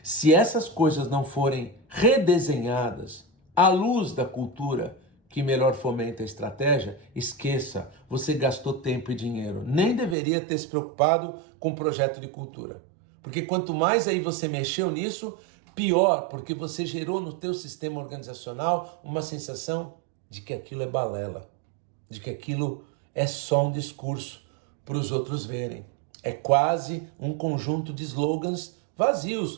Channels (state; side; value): drops out; left; at 10.2 s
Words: se essas coisas não forem redesenhadas à luz da cultura que melhor fomenta a estratégia, esqueça, você gastou tempo e dinheiro. Nem deveria ter se preocupado com o projeto de cultura. Porque quanto mais aí você mexeu nisso, pior, porque você gerou no teu sistema organizacional uma sensação de que aquilo é balela, de que aquilo é só um discurso para os outros verem. É quase um conjunto de slogans